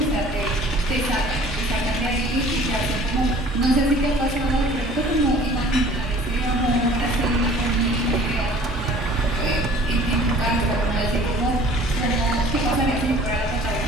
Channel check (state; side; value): normal; both; correlation 0.50